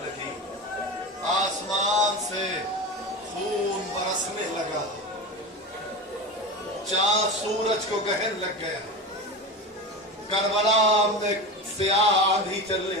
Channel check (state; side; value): normal; both; correlation 0.25